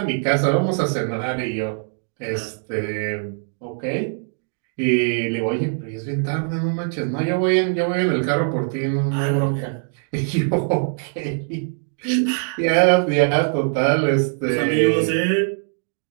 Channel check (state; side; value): silent; left; 64 dB below the other